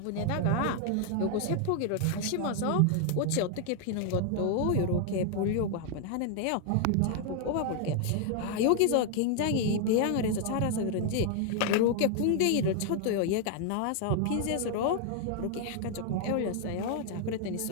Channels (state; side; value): different; both; correlation 0.00